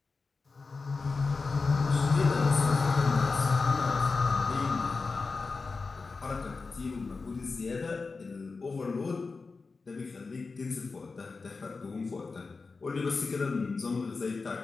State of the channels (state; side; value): quieter; right; 4.3 dB